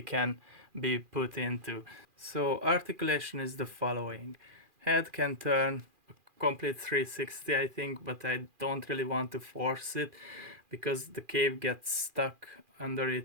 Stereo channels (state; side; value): late; left; 2.4 ms